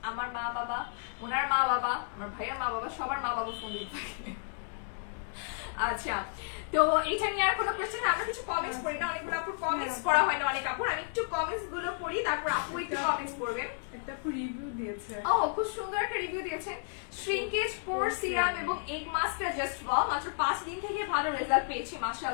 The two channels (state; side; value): silent; right; digital silence